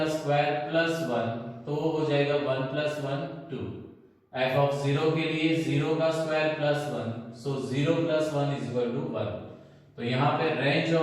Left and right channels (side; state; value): both; identical; correlation 1.00